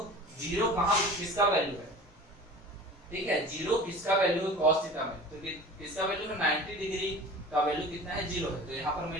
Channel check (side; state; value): both; normal; correlation 0.39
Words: 0 कहाँ किसका वैल्यू है। ठीक है, 0 किसका वैल्यू है cos थीटा में, तो किसका वैल्यू है 90 डिग्री का वैल्यू कितना है, 0 है। तो यहाँ पर मैं